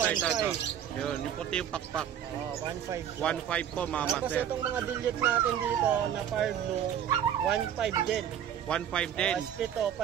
Yun, yung puti yung pakpak. 1,500. 1,500 po mga Tapos master. itong mga dilute natin dito na far blue, 1,500 din. 1,500 din. Split o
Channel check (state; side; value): quieter; left; 9.7 dB